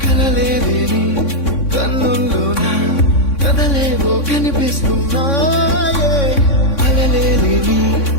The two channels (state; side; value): late; right; 3.6 ms